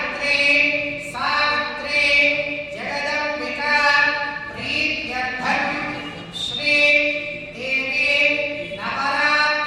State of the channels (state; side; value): identical; both; correlation 1.00